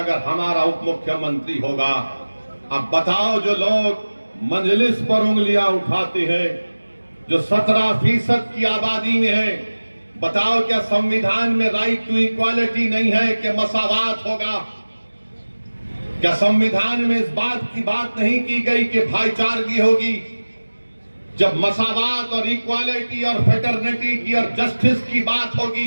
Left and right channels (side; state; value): both; inverted; correlation -1.00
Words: हमारा उप मुख्यमंत्री होगा। अब बताओ, जो लोग मजलिस पर उंगलियां उठाते हैं, जो 17% की आबादी में है, बताओ क्या संविधान में राइट टू इक्वालिटी नहीं है कि मसावात होगा? क्या संविधान में इस बात की बात नहीं की गई कि भाईचारगी होगी? जब मसावात और इक्वालिटी और फेटर्निटी की और जस्टिस की बात